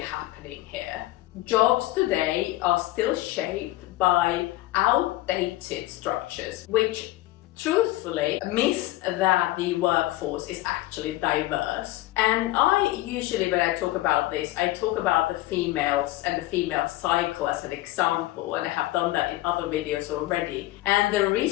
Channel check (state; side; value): quieter; right; 17.4 dB